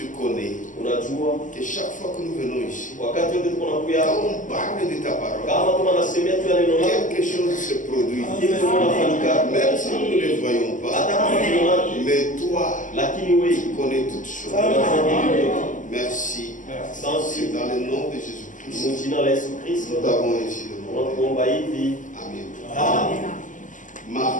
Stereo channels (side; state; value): right; late; 0.37 ms